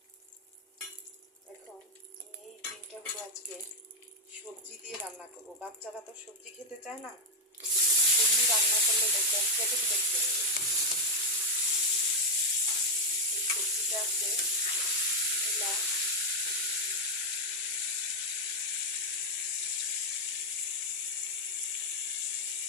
এখন আমি এই ডিমটাগুলো আজকে সবজি দিয়ে রান্না করবো। বাচ্চারা তো সবজি খেতে চায় না, এমনি রান্না করলে দেখবেন কেটে কেটে খেয়ে নেবে। এই সবজিটা আছে মূলা,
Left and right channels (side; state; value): both; normal; correlation 0.02